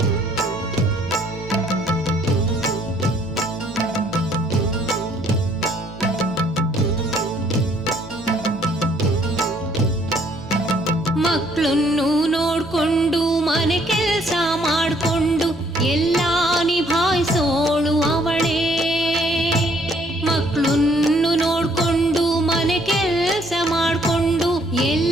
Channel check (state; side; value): normal; both; correlation 0.64